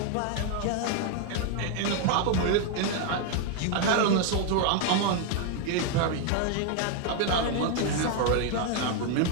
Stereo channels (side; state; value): both; different; correlation 0.00